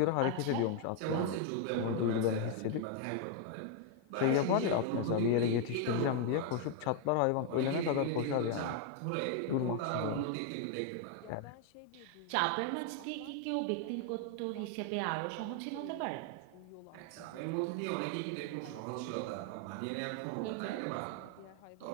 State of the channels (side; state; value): both; different; correlation 0.00